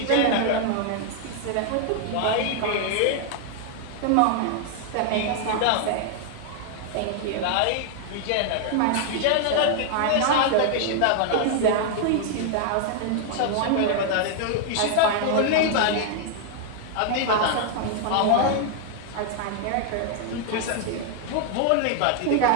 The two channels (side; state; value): both; different; correlation 0.00